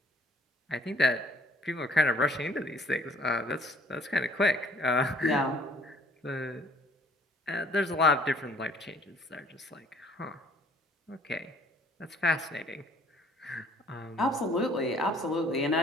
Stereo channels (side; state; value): both; normal; correlation 0.58